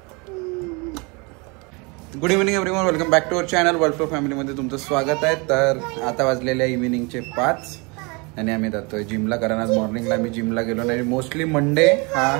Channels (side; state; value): left; quieter; 29.4 dB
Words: Good evening everyone, welcome back to our channel World Flow फॅमिलीमध्ये तुमचं स्वागत आहे. तर आता वाजलेल्या इव्हिनिंगचे 5 आणि आम्ही जातोय जिमला, कारण आज मॉर्निंगला आम्ही जिमला गेलो नाही. मोस्टली मंडे हा